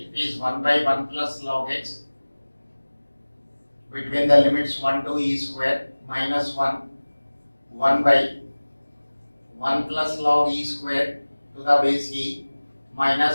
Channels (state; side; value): inverted; both; correlation -1.00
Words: it is 1 by 1 plus log x between the limits 1 to e square minus 1, 1 by 1 plus log e square to the base e